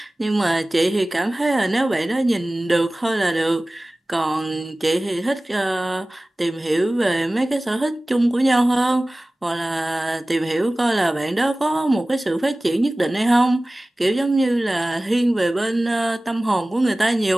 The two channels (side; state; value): both; normal; correlation 0.98